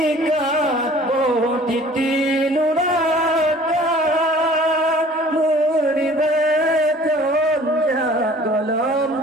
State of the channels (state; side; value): normal; both; correlation 0.50